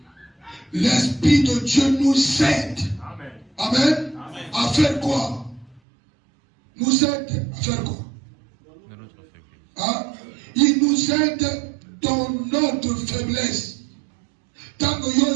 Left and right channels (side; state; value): left; drops out; at 5.8 s